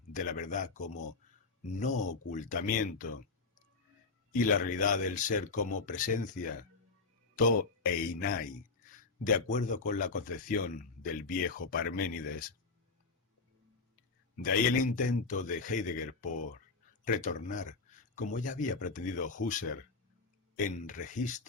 de la verdad como no ocultamiento, y la realidad del ser como presencia, to einai, de acuerdo con la concepción del viejo Parménides. De ahí el intento de Heidegger por retornar, como ya había pretendido Husserl, en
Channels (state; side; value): quieter; right; 4.1 dB